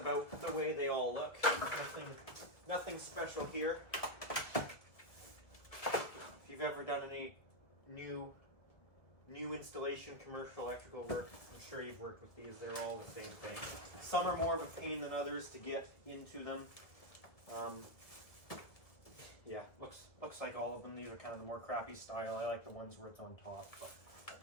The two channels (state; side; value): late; right; 1.9 ms